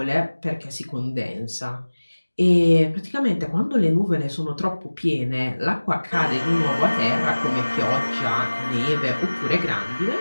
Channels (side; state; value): both; inverted; correlation -1.00